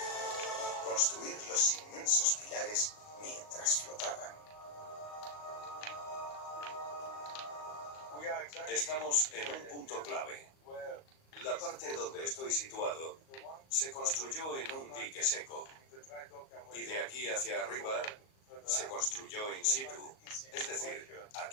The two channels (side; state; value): right; late; 37 ms